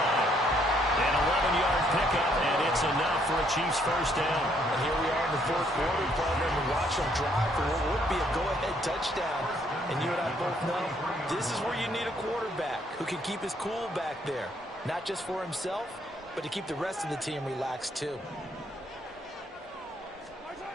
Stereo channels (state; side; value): normal; both; correlation 0.69